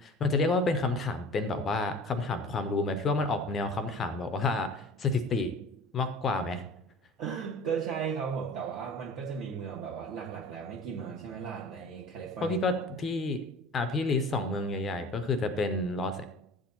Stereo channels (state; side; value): normal; both; correlation 0.42